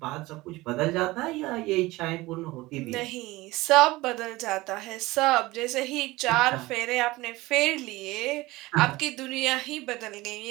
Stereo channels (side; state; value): left; quieter; 19.9 dB